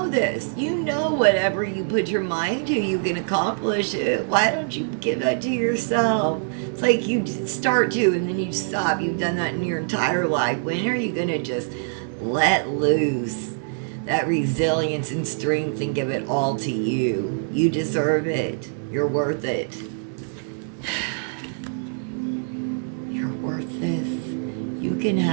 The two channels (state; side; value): silent; left; 60 dB below the other